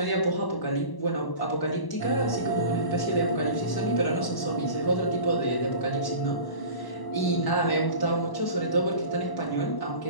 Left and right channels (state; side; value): late; right; 1.0 ms